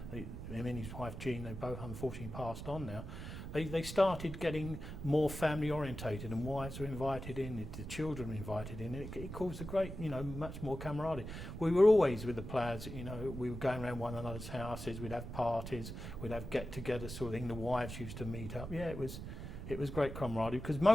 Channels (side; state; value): right; noise; rumble, 8 dB below the sound